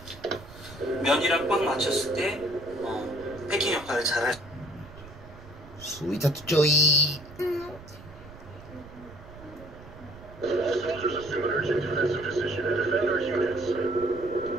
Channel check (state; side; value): noise; right; rumble, 18 dB below the sound